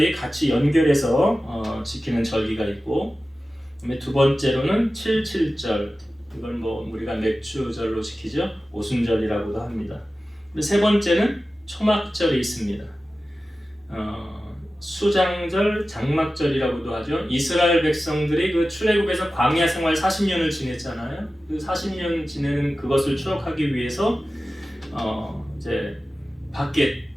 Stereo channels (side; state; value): both; normal; correlation 0.95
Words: 같이 연결해서 지키는 절기가 있고, 그다음에 두 번째로는 77절, 이걸 우리가 맥주절로 지키죠. 오순절이라고도 합니다. 세 번째는 초막절이 있습니다. 수장절, 장막절이라고도 하죠. 이스라엘 백성들이 그 출애굽에서 광야 생활 40년을 지냈잖아요. 그 40년 지내는 그것을 추억하기 위해서 이제 밖에